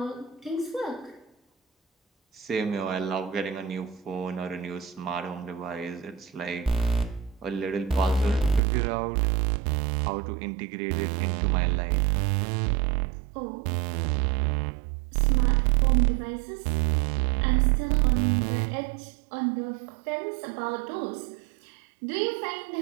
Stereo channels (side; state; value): left; drops out; at 8.6 s